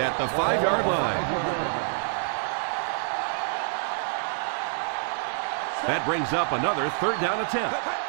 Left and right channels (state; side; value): silent; left; digital silence